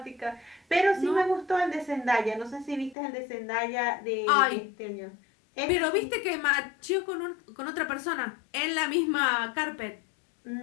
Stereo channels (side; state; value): right; drops out; at 3.0 s